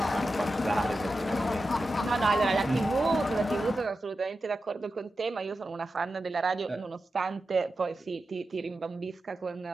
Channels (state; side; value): normal; both; correlation 0.91